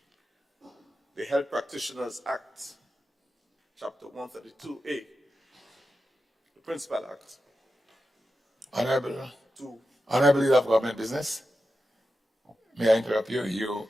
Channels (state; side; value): normal; both; correlation 0.90